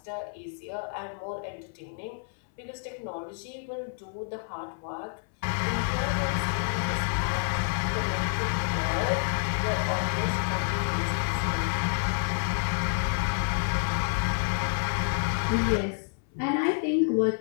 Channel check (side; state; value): right; silent; 59 dB below the other